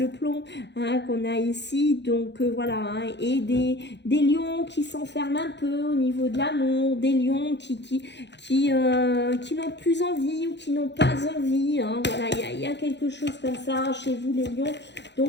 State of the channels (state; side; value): late; right; 0.51 ms